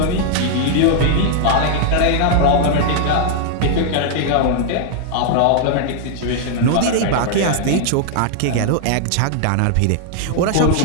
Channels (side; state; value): both; different; correlation -0.01